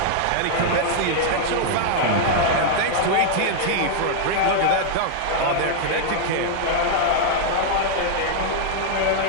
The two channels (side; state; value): both; different; correlation -0.01